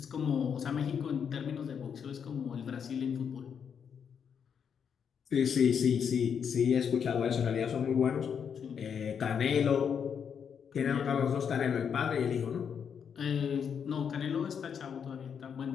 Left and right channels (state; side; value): quieter; right; 7.3 dB